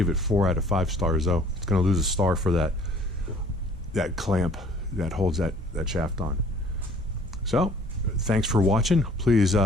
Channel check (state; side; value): normal; both; correlation 0.55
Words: it 4 out of 5 stars though. It's going to lose a star for that clamp that holds that shaft on. So thanks for watching. Please